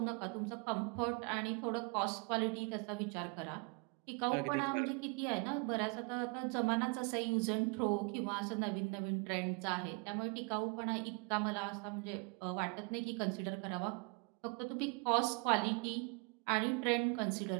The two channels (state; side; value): quieter; left; 32.0 dB